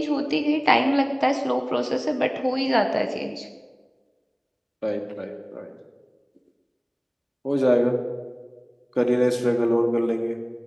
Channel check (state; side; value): identical; both; correlation 1.00